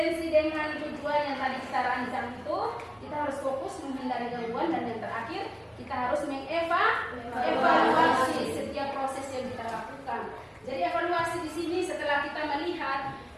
dengan tujuan yang tadi kita rancang itu, kita harus fokus menghindari gangguan, dan yang terakhir kita harus mengevaluasi setiap proses yang kita lakukan. Jadi evaluasi di sini setelah kita melihat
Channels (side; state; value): both; identical; correlation 1.00